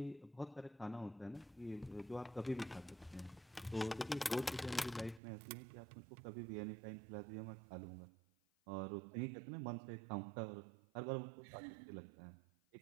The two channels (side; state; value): left; drops out; at 5.2 s